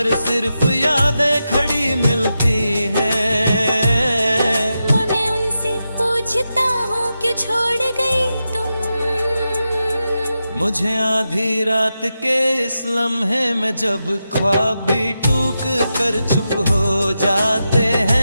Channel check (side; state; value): both; inverted; correlation -0.89